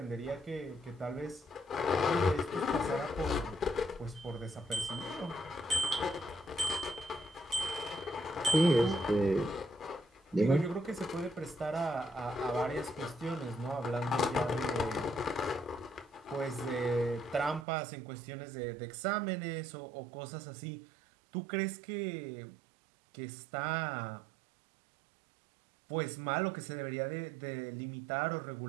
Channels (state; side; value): drops out; left; at 17.7 s